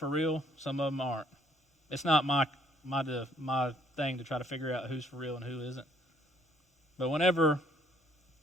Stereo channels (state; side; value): normal; both; correlation 0.65